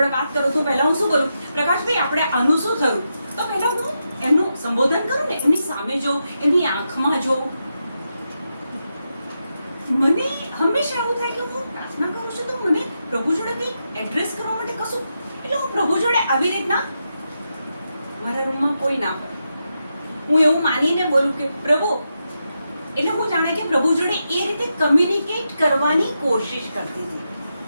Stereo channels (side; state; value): both; inverted; correlation -0.86